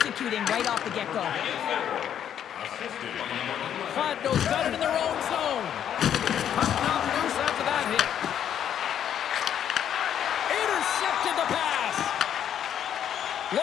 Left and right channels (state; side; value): quieter; right; 9.6 dB